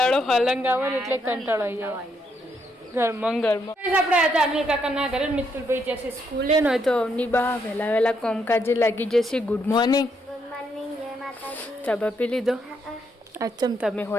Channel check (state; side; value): normal; both; correlation 0.76